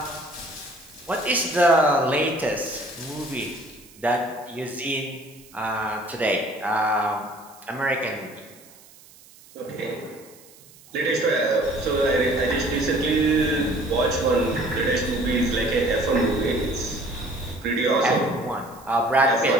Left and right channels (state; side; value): noise; right; hiss, 24 dB below the sound